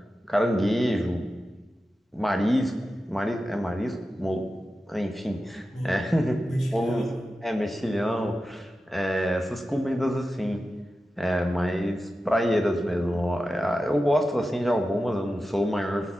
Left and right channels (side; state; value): both; normal; correlation 0.92